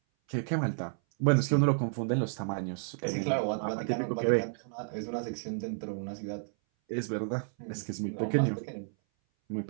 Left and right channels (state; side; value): silent; left; 57 dB below the other